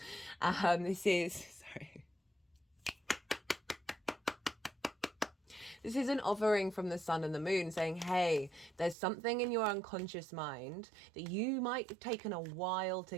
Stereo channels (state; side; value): drops out; left; at 9.0 s